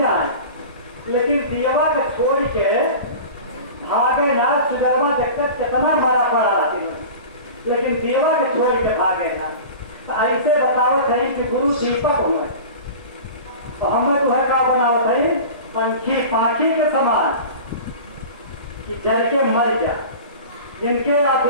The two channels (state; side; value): inverted; both; correlation -0.35